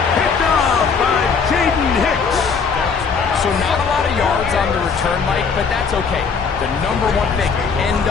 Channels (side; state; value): right; quieter; 5.6 dB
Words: Picked off by Jaden Hicks. So not a lot of yards on the return, Mike, but that's okay. The number one thing, end